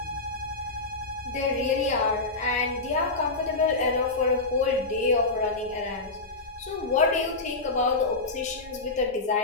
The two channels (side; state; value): right; quieter; 3.4 dB